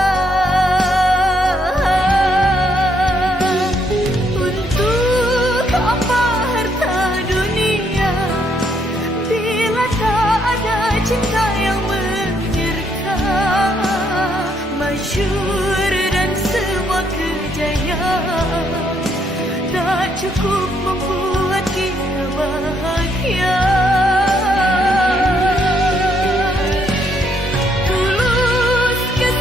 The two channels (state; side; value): normal; both; correlation 0.73